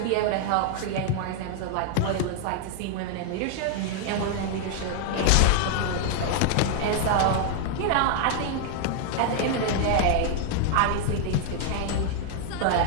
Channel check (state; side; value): different; both; correlation 0.00